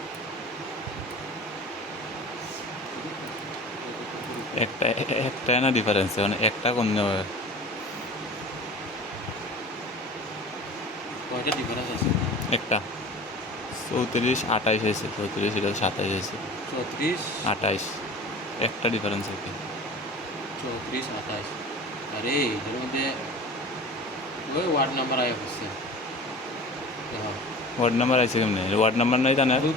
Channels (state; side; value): normal; both; correlation 0.38